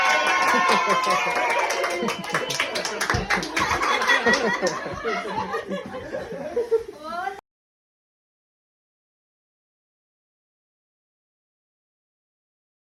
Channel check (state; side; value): identical; both; correlation 1.00